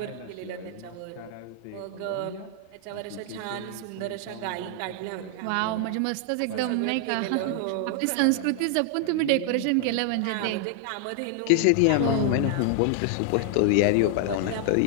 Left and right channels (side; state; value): both; different; correlation 0.00